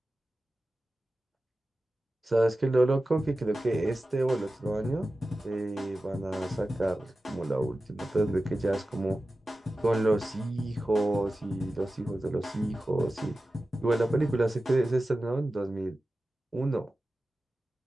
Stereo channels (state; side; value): normal; both; correlation 0.94